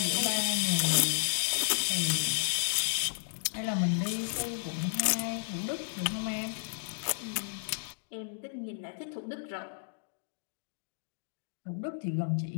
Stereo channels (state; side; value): silent; right; digital silence